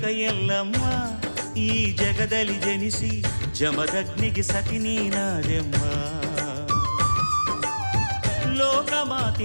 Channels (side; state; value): both; inverted; correlation -1.00